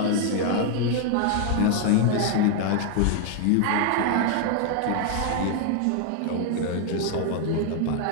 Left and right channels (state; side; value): different; both; correlation 0.00